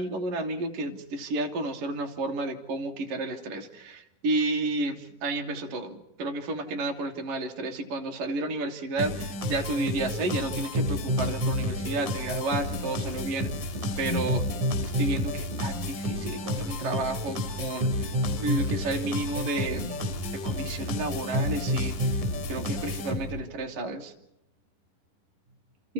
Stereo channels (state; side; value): late; left; 9.9 ms